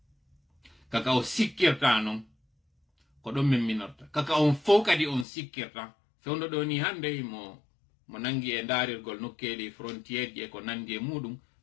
kaka o sikkirta non ko ɗon min minorta kaka on fof kadi on sikkirta fewndo ɗo ni hande mo nangi e daarirgol nokkeli frontiére ji e ko nandi e muɗum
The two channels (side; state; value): right; drops out; at 5.2 s